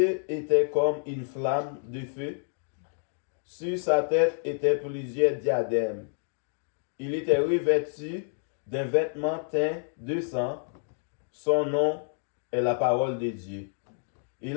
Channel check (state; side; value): silent; right; digital silence